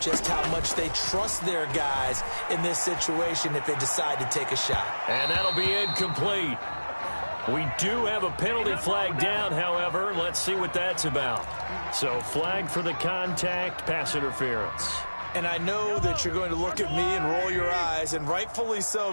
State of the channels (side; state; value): both; inverted; correlation -1.00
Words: just how much they trust their guys in this situation if they decide to take a shot. And that'll be incomplete. We do have a penalty flag down, however. Let's see what that's about. So flag for the contact, pass interference. And I know that you're going to look at me and roll your eyes, and rightfully so,